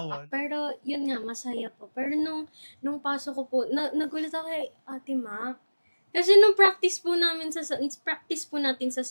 Pero yun nga, masaya po. Pero nung pasok ko po, nagulat ako kay Ate Mac. Kasi nung practice po natin sa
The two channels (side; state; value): both; inverted; correlation -1.00